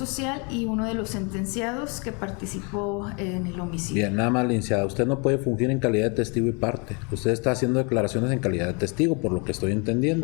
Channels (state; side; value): quieter; right; 32.9 dB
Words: y uno de los sentenciados que participó en el homicidio. Bien, nada más, licenciada, usted no puede fungir en calidad de testigo y parte. Usted está haciendo declaraciones en calidad de testigo, por lo que estoy